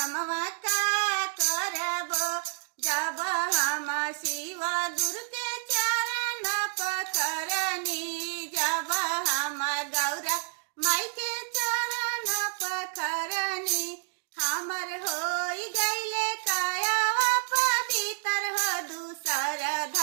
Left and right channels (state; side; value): silent; left; digital silence